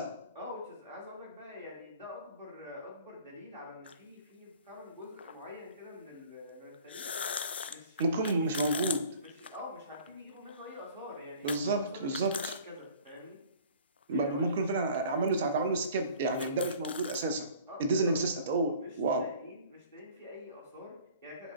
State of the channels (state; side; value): inverted; both; correlation -0.49